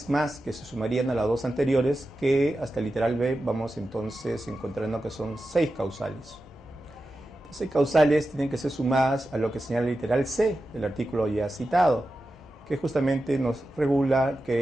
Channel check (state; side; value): normal; both; correlation 0.92